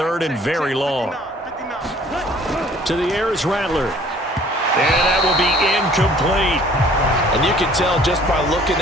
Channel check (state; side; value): normal; both; correlation 0.54